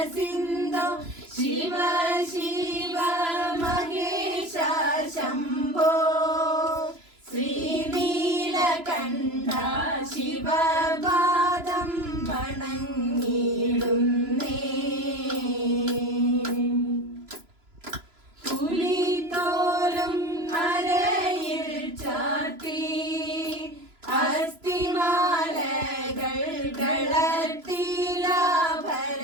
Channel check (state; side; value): late; left; 3.0 ms